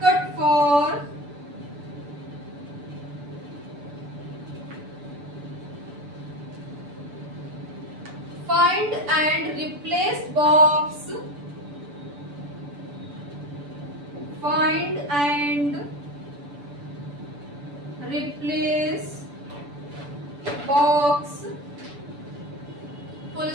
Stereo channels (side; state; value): left; late; 6.9 ms